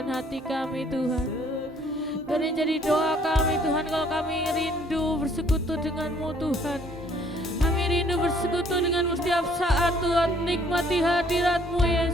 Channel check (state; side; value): normal; both; correlation 0.61